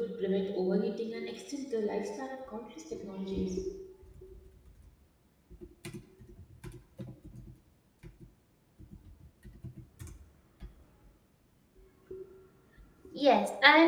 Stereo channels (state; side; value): identical; both; correlation 1.00